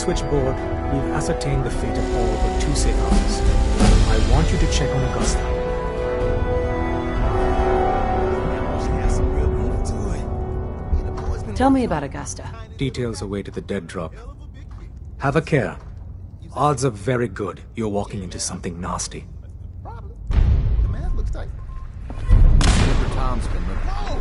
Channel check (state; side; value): identical; both; correlation 1.00